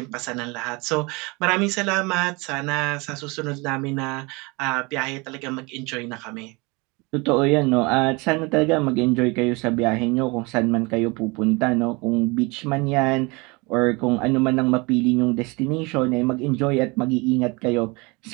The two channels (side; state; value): left; quieter; 26.7 dB